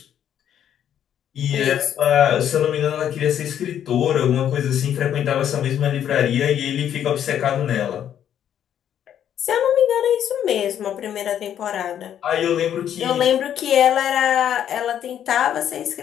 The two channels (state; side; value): quieter; right; 9.9 dB